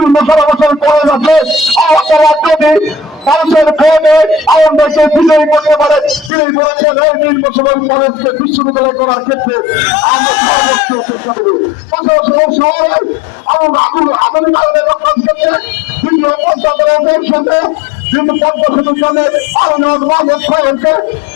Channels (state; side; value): drops out; right; at 6.3 s